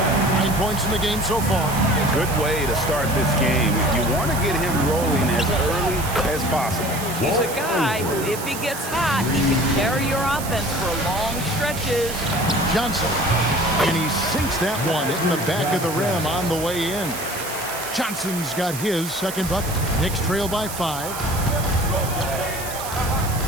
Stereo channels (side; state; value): right; noise; hiss, 9 dB below the sound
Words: 9 points in the game so far. Good way to start this game. You want to get him rolling as early as possible. He's a guy who, if he gets hot, he can carry your offense for long stretches. Johnson, and he sinks that one in the back of the rim on the way in. Johnson's got his second bucket. Knicks trail by 5.